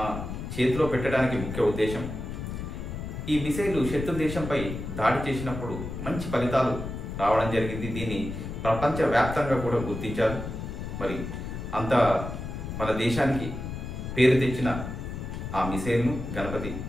చేతిలో పెట్టడానికి ముఖ్య ఉద్దేశం, ఈ మిసైలు శత్రు దేశంపై దాడి చేసినప్పుడు మంచి ఫలితాలు రావడం జరిగింది. దీన్ని ప్రపంచవ్యాప్తంగా కూడా గుర్తించారు. మరి అంత మన దేశానికి పేరు తెచ్చిన ఆ మిసైల్ను గణపతి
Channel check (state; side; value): noise; left; rumble, 7 dB below the sound